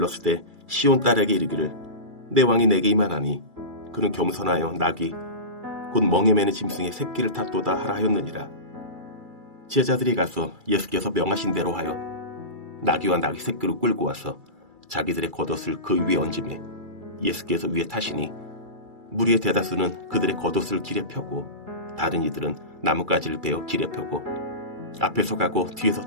시온 딸에게 이르기를 내 왕이 내게 임하나니 그는 겸손하여 나귀 곧 멍에 매는 짐승의 새끼를 탔도다 하라 하였느니라. 제자들이 가서 예수께서 명하신 대로 하여 나귀와 나귀 새끼를 끌고 와서 자기들의 겉옷을 그 위에 얹으매 예수께서 위에 타시니 무리의 대다수는 그들의 겉옷을 길에 펴고 다른 이들은 나뭇가지를 베어 길에 펴고 앞에서 가고 뒤에서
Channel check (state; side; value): late; left; 2.3 ms